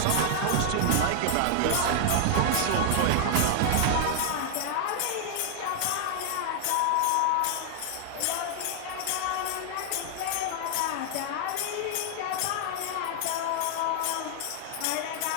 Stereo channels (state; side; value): different; both; correlation 0.00